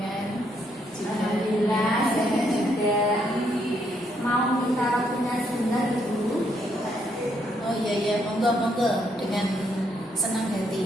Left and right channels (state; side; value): normal; both; correlation 0.74